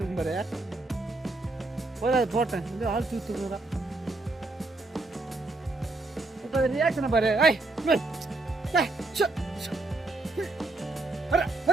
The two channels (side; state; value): left; quieter; 3.1 dB